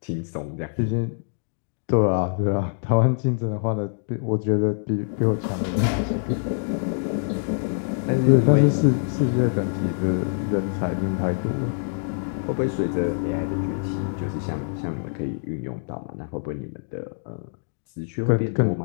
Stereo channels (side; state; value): right; silent; digital silence